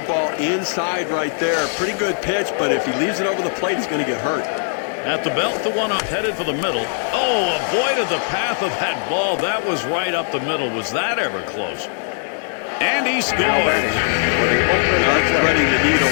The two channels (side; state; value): right; silent; digital silence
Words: inside right there. Pretty good pitch, but if he leaves it over the plate, he's going to get hurt. At the belt, the one up headed for the middle. Oh, avoided the path of that ball. That was right up the middle. Was that ever close? And he Now scores. batting for the Oakland That's Athletics. threading the needle